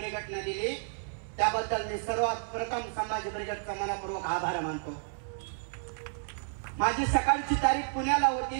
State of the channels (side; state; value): left; silent; 57 dB below the other